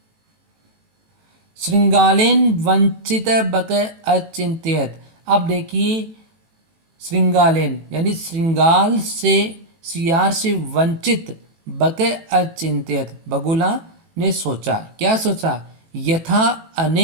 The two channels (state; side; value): late; left; 18 ms